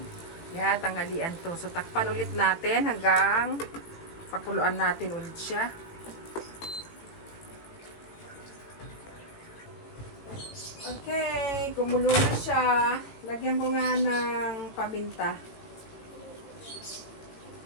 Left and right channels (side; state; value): right; late; 18 ms